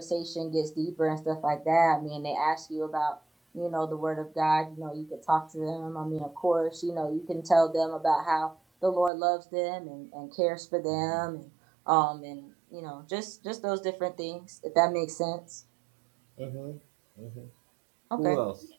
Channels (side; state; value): left; drops out; at 9.1 s